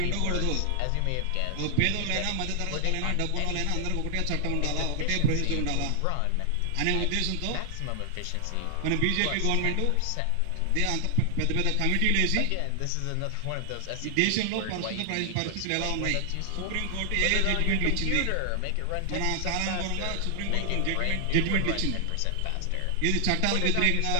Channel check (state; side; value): different; both; correlation 0.00